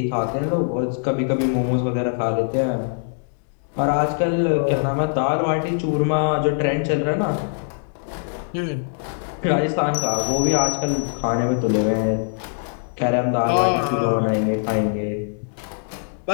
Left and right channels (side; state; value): right; silent; digital silence